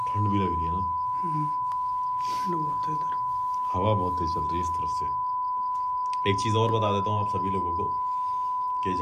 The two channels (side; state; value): both; identical; correlation 1.00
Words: ठंड भी लग रही है ना, ठंड बहुत है इधर। हवा बहुत तेज चल रही है इस तरफ से। एक चीज़ और बता देता हूँ आप सभी लोगों को कि